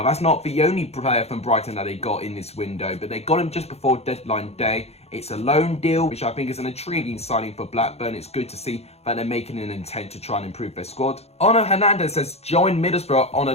that's not the only player from Brighton that they got in this window, but they got him just before deadline day. It's a loan deal, which I think is an intriguing signing for Blackburn. It's good to see that they're making an intent to try and improve their squad. Ono Hernandez has joined Middlesbrough on a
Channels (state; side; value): late; right; 0.30 ms